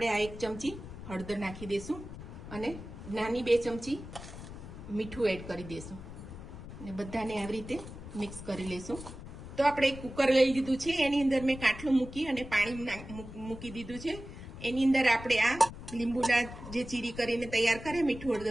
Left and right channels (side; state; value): left; noise; rumble, 12 dB below the sound